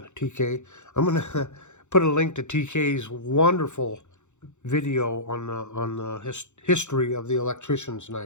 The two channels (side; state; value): right; late; 0.84 ms